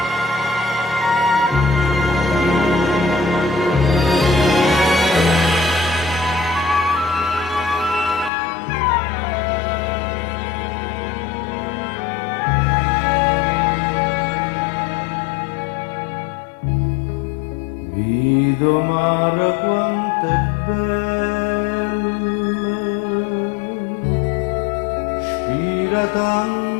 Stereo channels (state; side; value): drops out; right; at 8.3 s